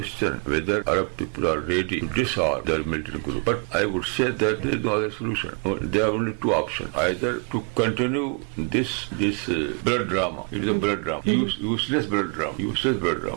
whether Arab people are ready to disarm their militant group. But I would say that there is no other solution. There are only two options: either to continue this blood drama. It is a blood drama, useless blood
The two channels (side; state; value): left; quieter; 36.1 dB